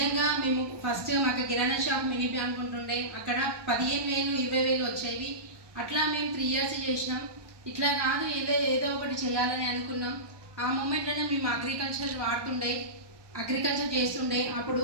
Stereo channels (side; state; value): left; late; 1.2 ms